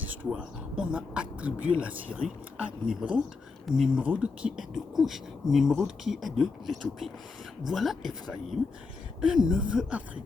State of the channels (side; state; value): right; quieter; 4.3 dB